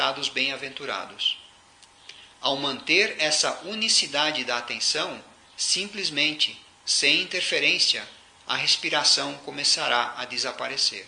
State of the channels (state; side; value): identical; both; correlation 1.00